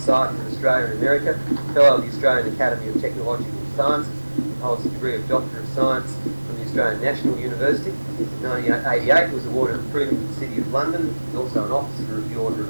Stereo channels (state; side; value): inverted; both; correlation -1.00